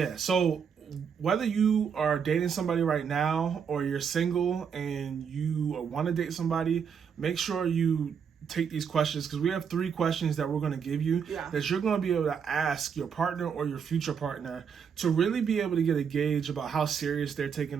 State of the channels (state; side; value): quieter; left; 7.0 dB